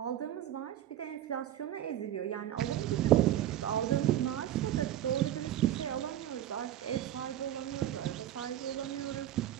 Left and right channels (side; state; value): left; quieter; 12.1 dB